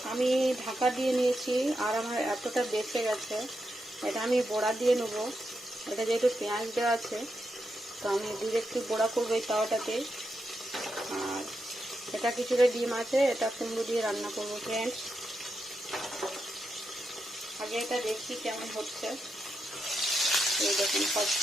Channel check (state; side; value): normal; both; correlation 0.85